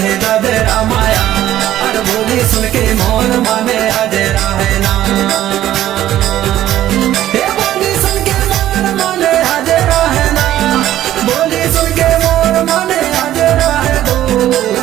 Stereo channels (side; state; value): left; quieter; 13.0 dB